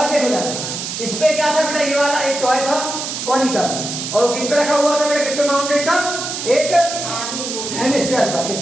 देखो जरा, इस पे क्या था बेटा? ये वाला एक टॉय था कॉनिकल, और किस पे रखा हुआ था बेटा? किस पे माउंटेड था? एक हेमिस्फीयर पर। किस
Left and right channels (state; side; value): noise; right; hiss, 5 dB below the sound